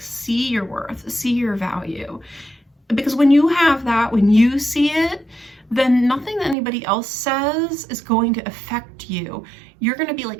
see your worth, see your value. Because when you have that, when you see it, then nothing that anybody else says is going to affect you. You're going to be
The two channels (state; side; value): drops out; left; at 6.6 s